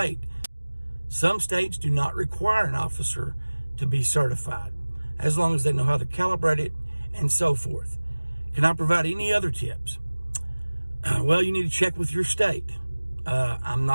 Some states do not require an officer to be certified, as long as they know how to calibrate it and so forth. Can I provide any other tips? Well, you need to check with your state. I'm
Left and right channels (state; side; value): inverted; both; correlation -1.00